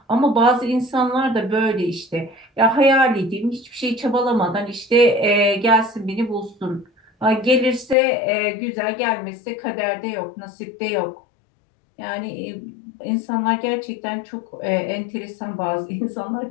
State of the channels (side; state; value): right; drops out; at 8.0 s